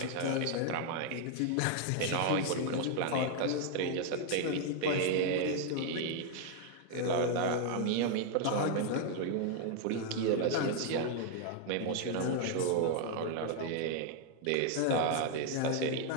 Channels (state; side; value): different; both; correlation 0.00